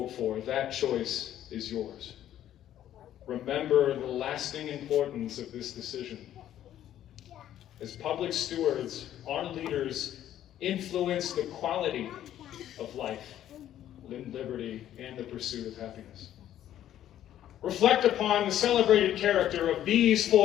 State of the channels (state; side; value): quieter; right; 11.7 dB